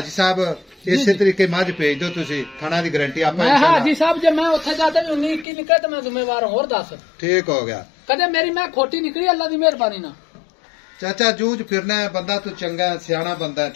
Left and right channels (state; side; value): drops out; right; at 5.5 s